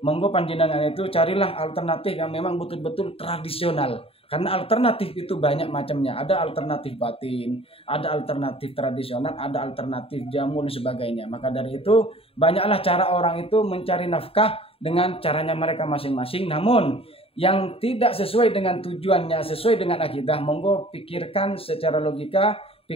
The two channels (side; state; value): right; late; 0.27 ms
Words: monggo panjenengan itu carilah alternatif yang memang betul-betul tradisional. Karena alternatif itu banyak macamnya. Ada alternatif batin, ada alternatif tradisional, ada alternatif jamu dan sebagainya. Maka dari itu banyaklah cara orang itu mencari nafkah dengan caranya mereka masing-masing. Namun yang tidak sesuai dengan tujuannya, sesuai dengan akidah, monggo pikirkan secara logika,